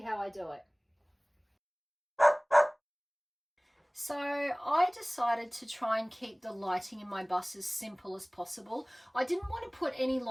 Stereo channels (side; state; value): both; identical; correlation 1.00